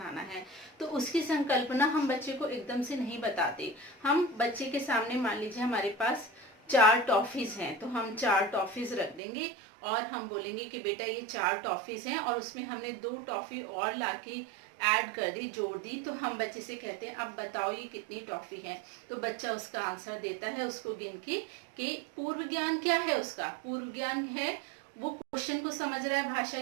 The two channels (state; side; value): drops out; left; at 9.2 s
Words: है, तो उसकी संकल्पना हम बच्चे को एकदम से नहीं बताते। हम बच्चे के सामने, मान लीजिए हमारे पास 4 टॉफीज हैं, तो हम 4 टॉफीज रख देंगे और हम बोलेंगे कि बेटा ये 4 टॉफीज हैं और उसमें हमने 2 टॉफी और लाके ऐड कर दी, जोड़ दी, तो हम बच्चे से कहते हैं अब बताओ ये कितनी टॉफी है। तो बच्चा उसका आंसर देता है उसको गिन के कि पूर्व ज्ञान क्या है उसका, पूर्व ज्ञान है वो क्वेश्चन को समझ रहा है भाषा